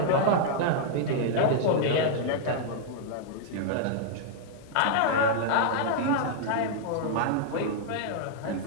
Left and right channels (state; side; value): different; both; correlation -0.01